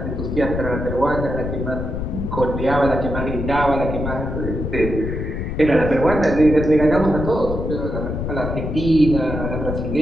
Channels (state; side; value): noise; left; rumble, 4 dB below the sound